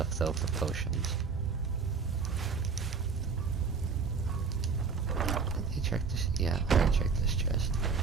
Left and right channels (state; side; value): quieter; left; 5.3 dB